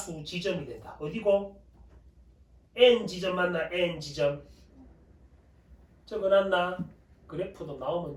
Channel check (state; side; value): identical; both; correlation 1.00